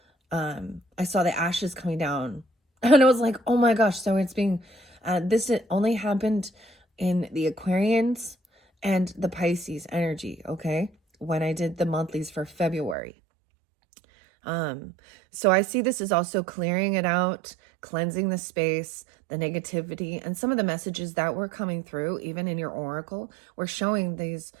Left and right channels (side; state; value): left; drops out; at 13.0 s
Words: I saw the ashes coming down and I was like, oh my gosh. So it's being, this only happened in the Aquarians and the Pisces energy. Okay. When I did the monthlies for February. So I see this is also clearing it out, cleansing the space, the negativity, and some of the messages that were coming through, even in your oracle, were showing these,